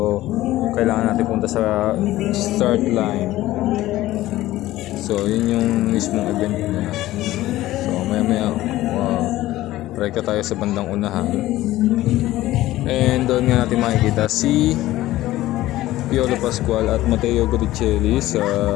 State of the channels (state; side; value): quieter; right; 15.9 dB